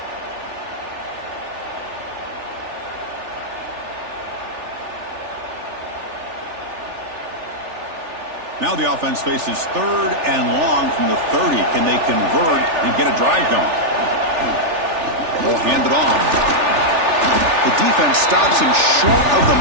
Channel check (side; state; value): left; late; 3.4 ms